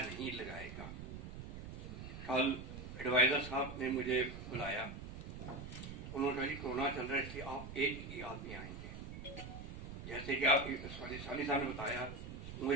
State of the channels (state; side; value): noise; right; rumble, 9 dB below the sound